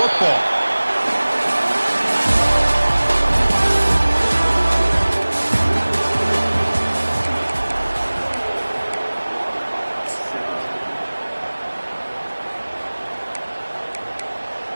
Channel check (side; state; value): both; inverted; correlation -1.00